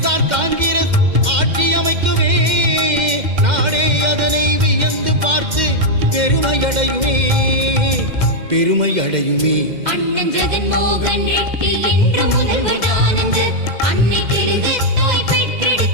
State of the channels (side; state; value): left; late; 2.1 ms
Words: காங்கிரஸ் ஆட்சி அமைக்குமே, நாடே அதனை வியந்து பார்த்து பெருமையடையுமே, பெருமையடையுமே. அண்ணன் ஜெகன்மோகன் ரெட்டி என்று முதல்வர் தானுங்க, அன்னை தெலுங்கு தாய்